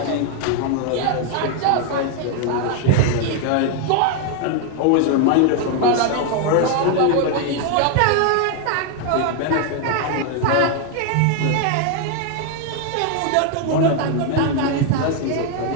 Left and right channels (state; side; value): different; both; correlation 0.01